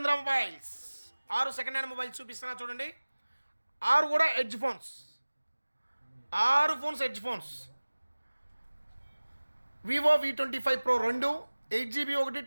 mobiles. 6 second hand mobiles చూపిస్తున్నా చూడండి. 6 కూడా edge phones. 6 phones edge phones. Vivo V25 Pro 2, 8GB ఒకటి,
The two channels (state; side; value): inverted; both; correlation -1.00